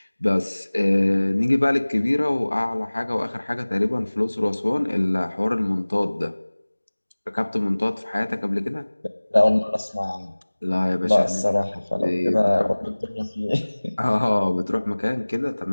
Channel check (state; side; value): inverted; both; correlation -1.00